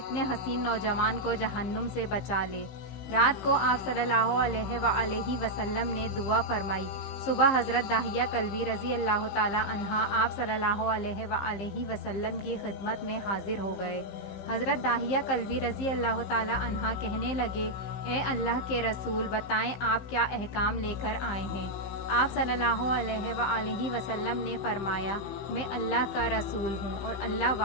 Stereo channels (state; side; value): late; right; 15 ms